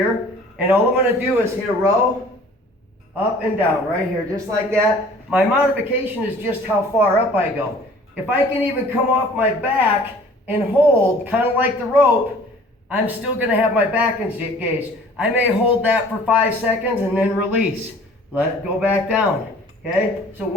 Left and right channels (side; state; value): both; normal; correlation 0.50